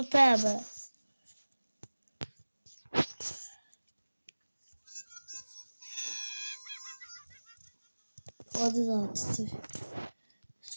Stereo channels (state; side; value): inverted; both; correlation -1.00